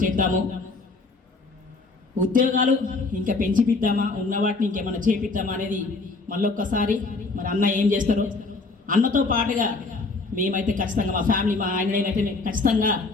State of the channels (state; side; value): quieter; right; 3.7 dB